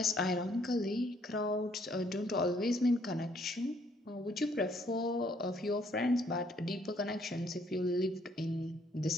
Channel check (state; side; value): normal; both; correlation 0.66